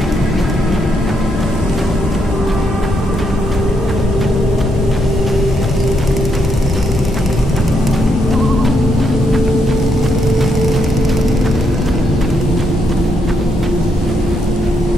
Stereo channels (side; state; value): both; normal; correlation 0.77